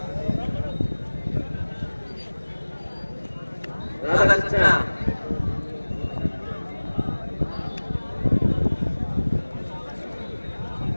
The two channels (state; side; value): inverted; both; correlation -1.00